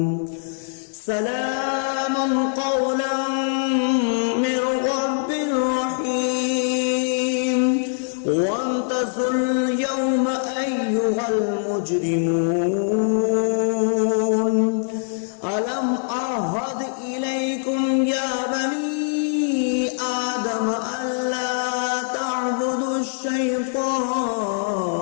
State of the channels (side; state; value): right; silent; digital silence